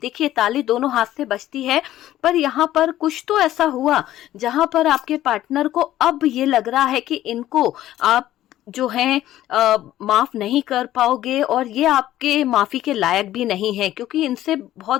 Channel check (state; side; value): quieter; right; 13.6 dB